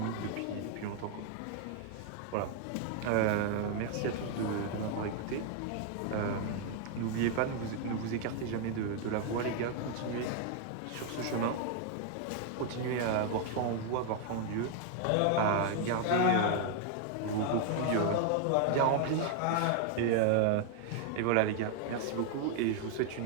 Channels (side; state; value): both; different; correlation 0.00